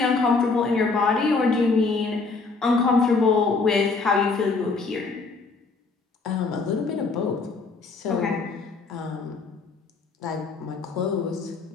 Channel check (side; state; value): right; quieter; 4.1 dB